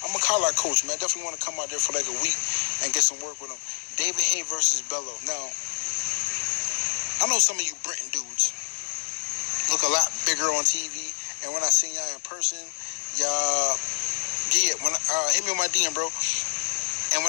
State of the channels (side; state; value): right; silent; 60 dB below the other